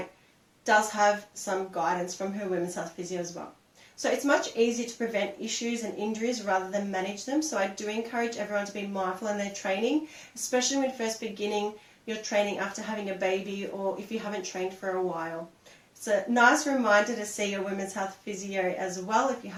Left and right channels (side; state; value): both; identical; correlation 1.00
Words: does have some guidance from her women's health physio as well. So it's much easier to prevent issues and injuries rather than manage them. So I do encourage everyone to be mindful in their training, especially when first beginning your training after having a baby or if you haven't trained for a while. It's a nice reminder to see your women's health physio as well if you